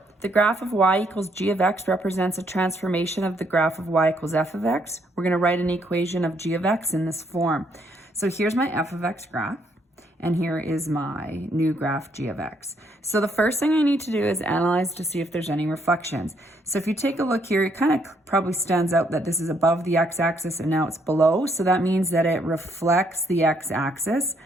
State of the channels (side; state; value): both; normal; correlation 0.71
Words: The graph of y equals g of x represents a transformation of the graph of y equals f of x. We're going to write an equation of g of x in this form. So here's my f of x graph, and here is my new graph g of x. So the first thing I need to do is analyze to see if there's any reflections. So if you take a look here, it kind of probably stands out that this is above the x-axis and now it's below. So that means that it reflects the x-axis.